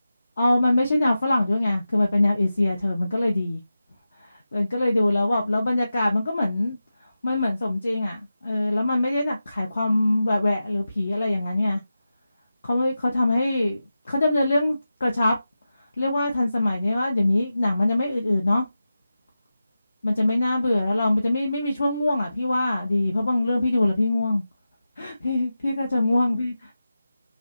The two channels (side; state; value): both; inverted; correlation -0.92